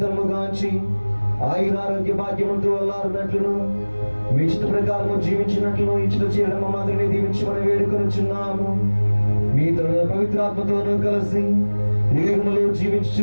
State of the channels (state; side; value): inverted; both; correlation -1.00